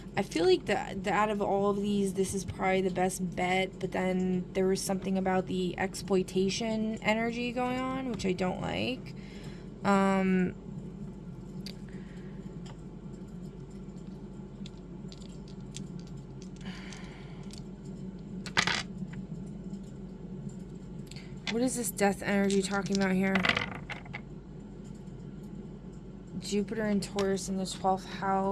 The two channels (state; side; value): identical; both; correlation 1.00